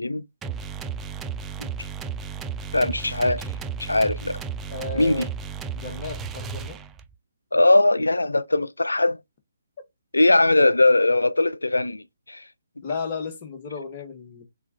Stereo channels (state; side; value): inverted; both; correlation -0.91